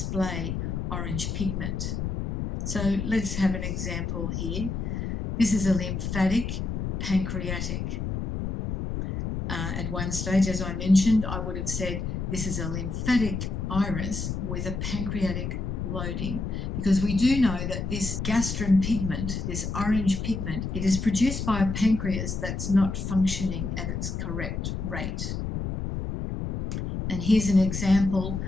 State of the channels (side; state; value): left; noise; rumble, 3 dB below the sound